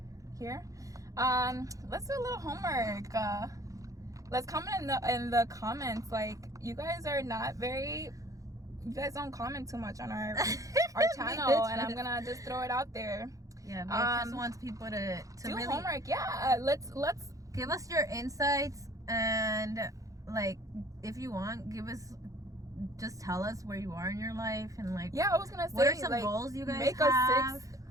here. Let's do a little homework. Let's comment in the comments. Like, you guys are not very you guys don't comment too much on our channel, and I'm gonna just throw it out there. Yeah, but just wants people to do really homework. Yeah, let's give us your insights, and like if you want, just tell us where you are in your life, and like I was gonna say, what are some like, goals you guys make have? a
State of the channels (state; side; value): late; left; 0.16 ms